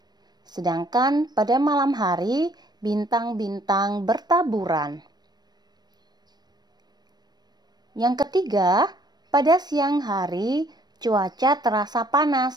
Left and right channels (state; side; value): late; left; 0.20 ms